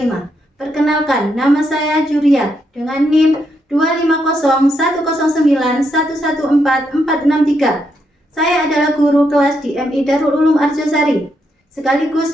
Perkenalkan, nama saya Juria dengan NIM 2501091144463. Saya adalah guru kelas di MI Darul Ulum Arjosari, sekaligus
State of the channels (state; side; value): normal; both; correlation 0.79